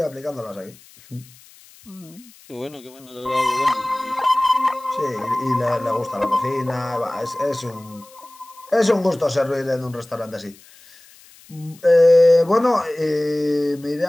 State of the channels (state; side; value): noise; left; hiss, 25 dB below the sound